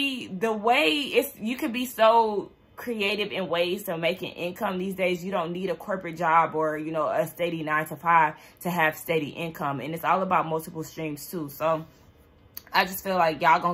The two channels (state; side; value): identical; both; correlation 1.00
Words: the way you could be so creative in ways to making income these days. You don't need a corporate job or, you know, a steady 9-to-5 to have steady income. And it's all about multiple streams too. So I just feel like y'all